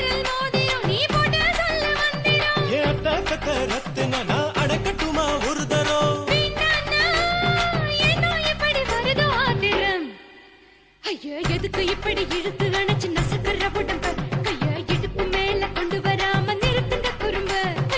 மோதிரம் நீ போட்டு சொல்ல வந்திடும். ஏத்த கத்த ரத்தின நான் அடக்கட்டுமா ஒரு தரம். வேண்டாண்ணா, ஏனோ இப்படி வருதோ ஆத்திரம். ஐயா எதுக்கு இப்படி இழுத்து அணைச்சு நசுக்குற உடம்ப கைய இடுப்பு மேல கொண்டு வராம நிறுத்துங்க குறும்ப.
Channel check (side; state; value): both; identical; correlation 1.00